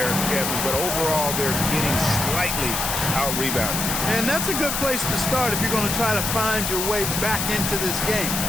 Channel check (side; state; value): left; noise; hiss, 1 dB below the sound